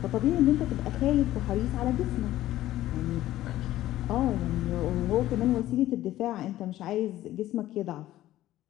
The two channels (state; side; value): quieter; right; 14.5 dB